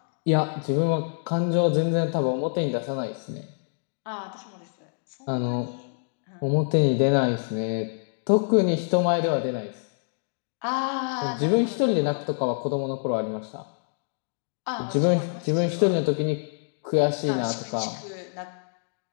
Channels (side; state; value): right; silent; digital silence